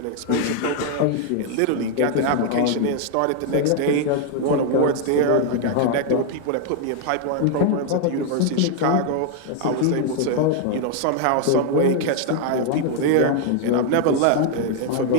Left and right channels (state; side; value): different; both; correlation 0.00